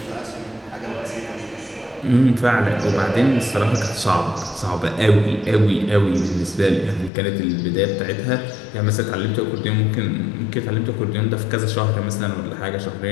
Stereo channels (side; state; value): right; drops out; at 7.1 s